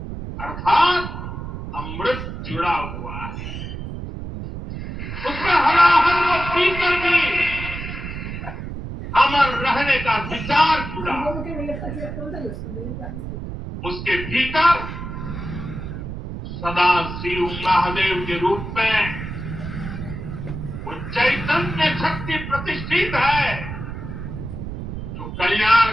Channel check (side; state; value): right; noise; rumble, 7 dB below the sound